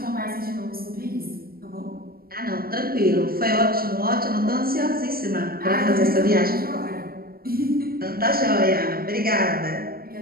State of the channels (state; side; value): late; left; 0.44 ms